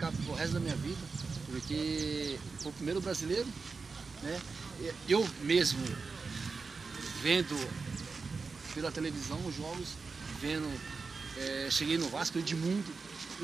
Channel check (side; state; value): left; quieter; 4.5 dB